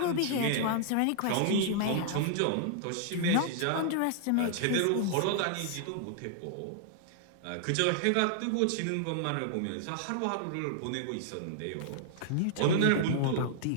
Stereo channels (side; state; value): both; different; correlation -0.01